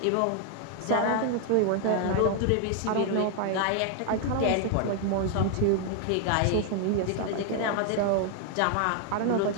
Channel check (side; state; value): both; different; correlation 0.00